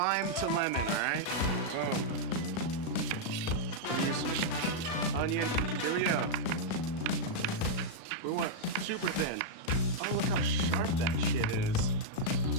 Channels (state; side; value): late; right; 37 ms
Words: to lemon, all right? Boom. Here's some onion. Here we go. We want super thin. Oh, look how sharp that shit is.